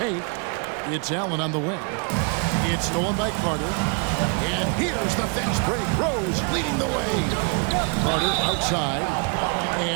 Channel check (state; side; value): quieter; left; 35.0 dB